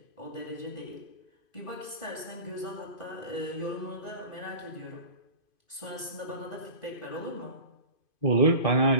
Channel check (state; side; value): late; right; 2.5 ms